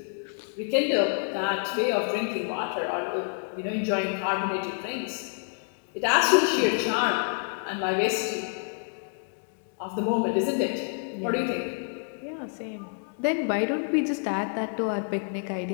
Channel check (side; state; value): right; silent; 56 dB below the other